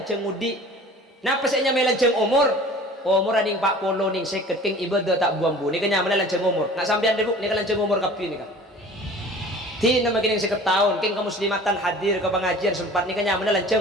ngudi. Napa saya nyamai lanceng umur? Umur aning 40 ning 50 keng ibadah tak buang-buang. Ini kan nyaman lanceng umur. Nak sampean debuk ni kan lanceng umur kapi ni kan. Ti nama kini seketahun keng kemuslimatan hadir ke pengajian sempat ni kan nyaman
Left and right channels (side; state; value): both; normal; correlation 0.44